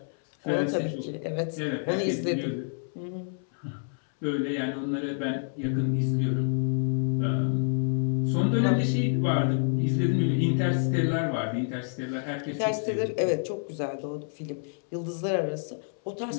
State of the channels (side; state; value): right; silent; 59 dB below the other